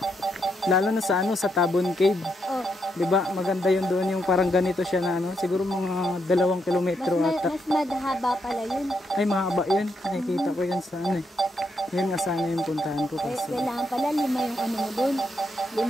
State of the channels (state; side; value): normal; both; correlation 0.79